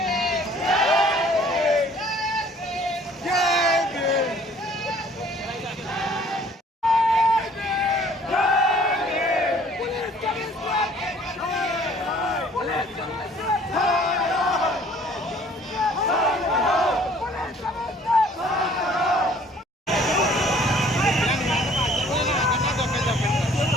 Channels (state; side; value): normal; both; correlation 0.55